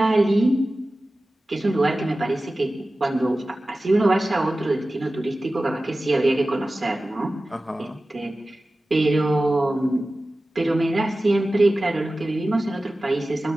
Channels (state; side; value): normal; both; correlation 0.96